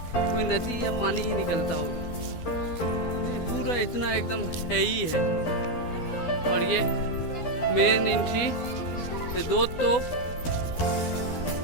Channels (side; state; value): right; late; 12 ms